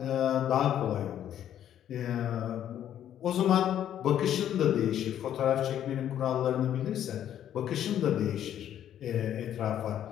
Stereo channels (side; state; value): right; quieter; 10.6 dB